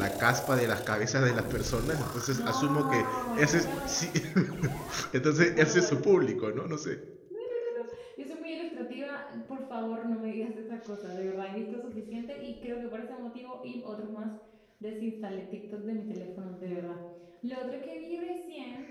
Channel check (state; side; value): identical; both; correlation 1.00